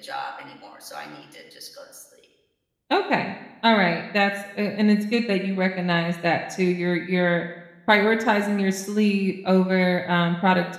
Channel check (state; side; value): identical; both; correlation 1.00